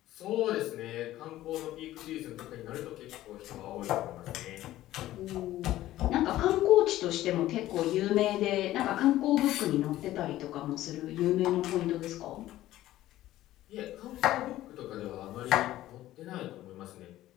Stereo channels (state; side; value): quieter; right; 14.7 dB